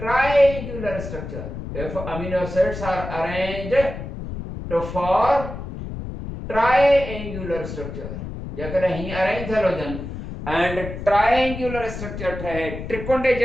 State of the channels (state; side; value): noise; left; rumble, 8 dB below the sound